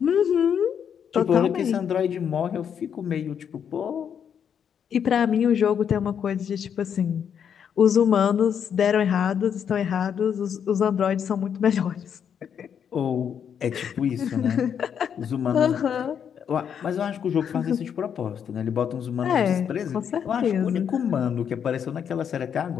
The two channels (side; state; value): right; quieter; 8.0 dB